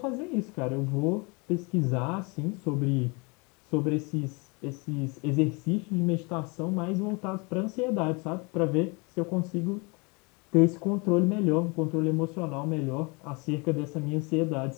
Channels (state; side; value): quieter; right; 29.7 dB